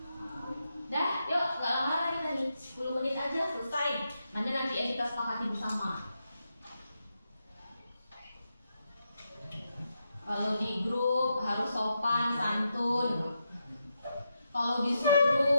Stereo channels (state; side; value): inverted; both; correlation -0.84